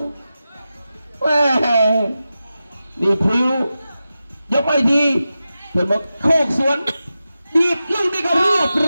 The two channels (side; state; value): both; inverted; correlation -0.93